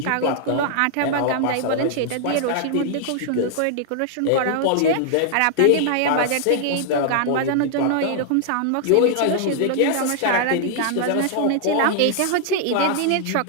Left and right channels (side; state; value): both; different; correlation -0.01